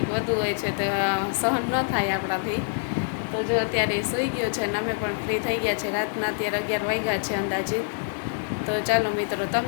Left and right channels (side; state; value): right; silent; digital silence